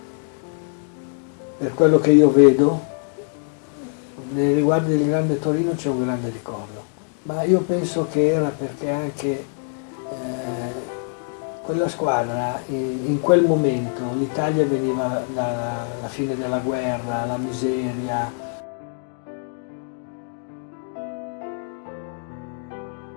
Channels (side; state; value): right; silent; 63 dB below the other